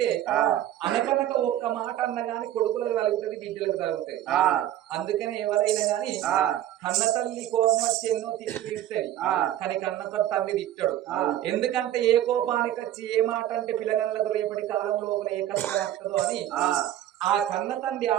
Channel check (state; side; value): quieter; left; 12.4 dB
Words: అనకనక ఒక్క మాట అన్న గాని కొడుకులకు తలుగుతుంది బిడ్డలకు తలుగుతుంది అందుకని ఎవరైనా గాని కన్న తల్లి కోపం వచ్చి ఎన్నో తిడుతుంది కానీ కన్న తల్లి తిట్టాడు ఎందుకంటే ఏ కోపానికి వచ్చి ఏ మాట అంటే పిల్లగాళ్ళకు రేపటి కాలం లోపల ఏ కష్టం వస్తుందో అని ఆ కన్న తండ్రి